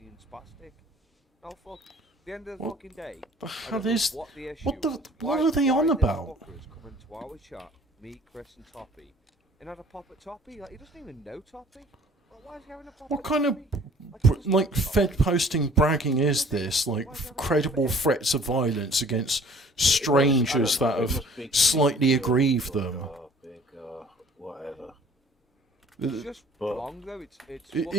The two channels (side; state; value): both; normal; correlation 0.52